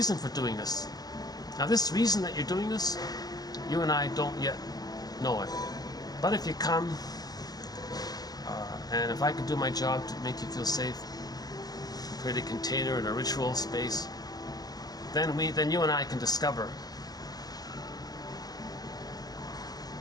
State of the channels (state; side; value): late; right; 0.19 ms